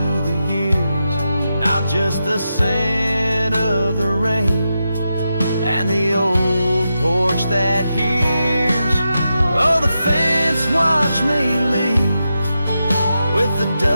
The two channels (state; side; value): inverted; both; correlation -0.88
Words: the years. Now just the scent of the rain and the old porch that hears. Oh, the fence watched me leave with the